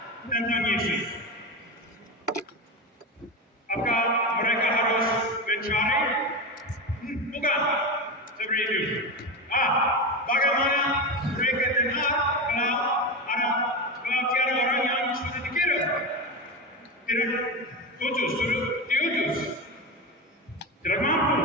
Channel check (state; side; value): normal; both; correlation 0.19